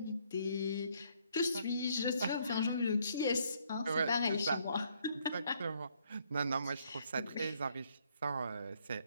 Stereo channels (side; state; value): both; inverted; correlation -0.68